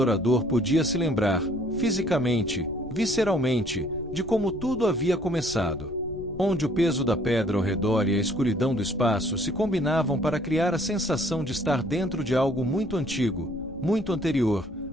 podia se lembrar, fisicamente, visceralmente, de como tudo havia começado. Onde o peso da pedra ao redor e a escuridão do espaço se combinavam para criar a sensação de estar dentro de algo muito antigo, muito anterior,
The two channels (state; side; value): noise; left; rumble, 17 dB below the sound